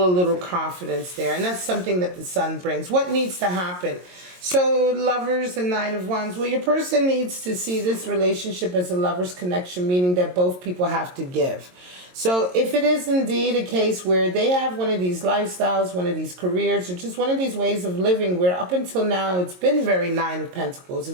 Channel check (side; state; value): left; late; 22 ms